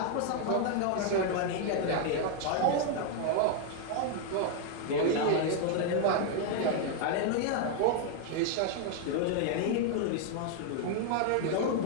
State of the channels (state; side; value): different; both; correlation 0.00